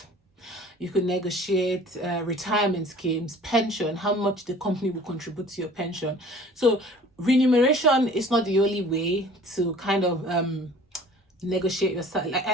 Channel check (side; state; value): both; normal; correlation 0.47